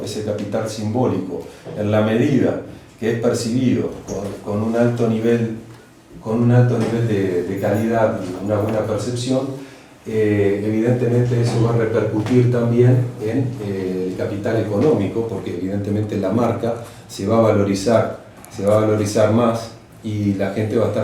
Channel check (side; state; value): both; identical; correlation 1.00